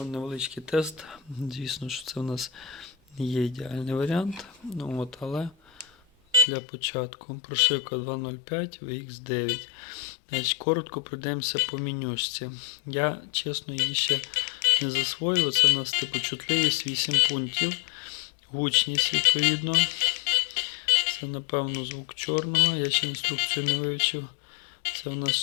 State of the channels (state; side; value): drops out; right; at 6.5 s